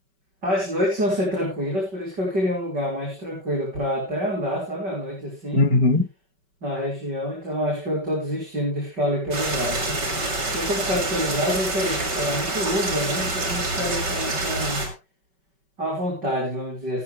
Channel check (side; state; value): left; late; 5.2 ms